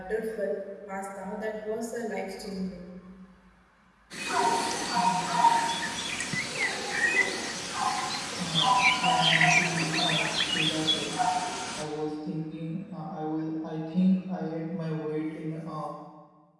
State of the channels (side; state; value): both; identical; correlation 1.00